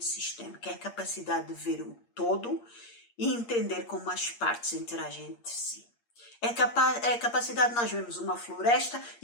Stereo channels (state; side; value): late; right; 8.5 ms